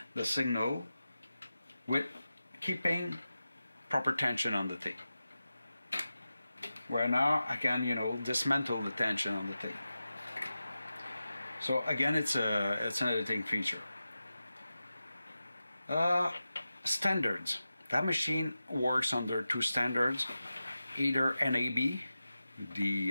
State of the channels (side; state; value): both; inverted; correlation -0.93